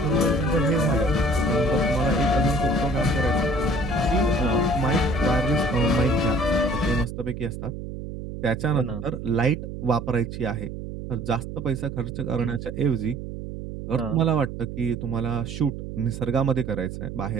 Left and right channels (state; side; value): noise; right; hum, 8 dB below the sound